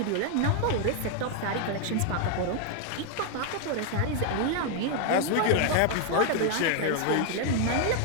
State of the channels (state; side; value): different; both; correlation 0.00